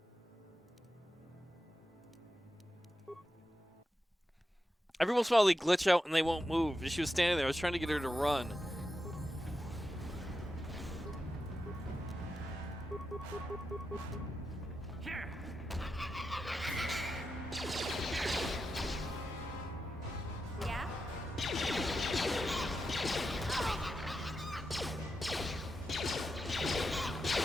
Every once in a while they glitch out and they won't move. She was standing there. I was trying to get her to run. Here. Yeah?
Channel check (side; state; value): both; normal; correlation 0.88